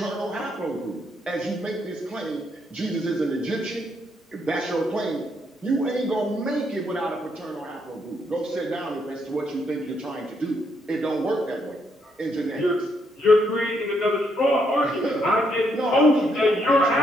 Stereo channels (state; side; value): normal; both; correlation 0.75